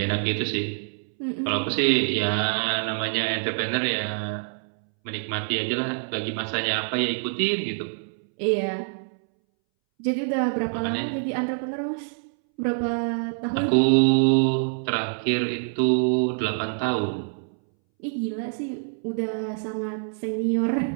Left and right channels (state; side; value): silent; left; 61 dB below the other